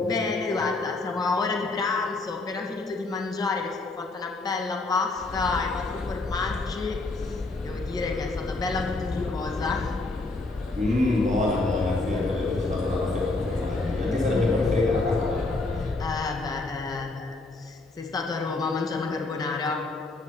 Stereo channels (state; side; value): quieter; right; 3.2 dB